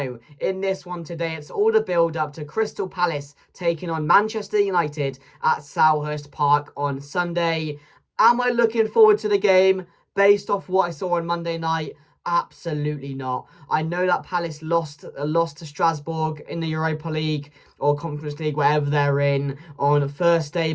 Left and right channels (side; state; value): both; identical; correlation 1.00